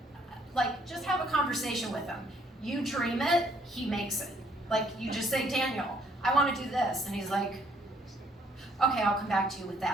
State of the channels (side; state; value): both; normal; correlation 0.65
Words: just have a conversation with him. You dream it, he makes it. You just say, Daniel, I want to do this, and he's like, okay, I'll come back to you with